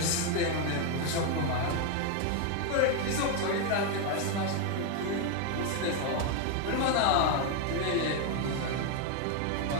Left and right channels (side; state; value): both; different; correlation 0.01